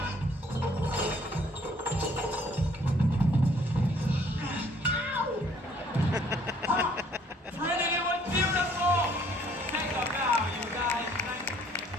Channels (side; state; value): both; normal; correlation 0.60